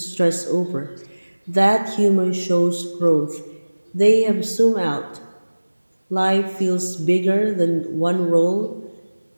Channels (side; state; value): both; inverted; correlation -1.00